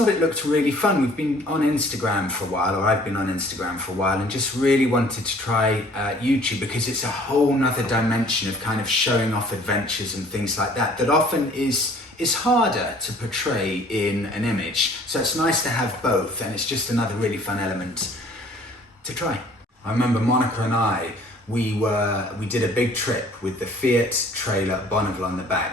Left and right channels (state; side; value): normal; both; correlation 0.54